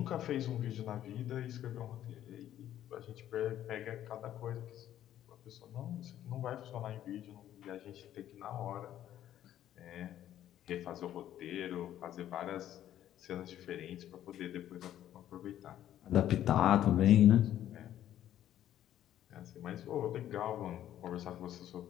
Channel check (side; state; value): right; quieter; 11.8 dB